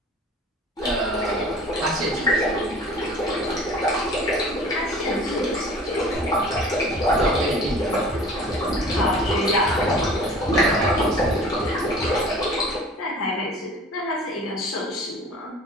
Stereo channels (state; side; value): normal; both; correlation 0.45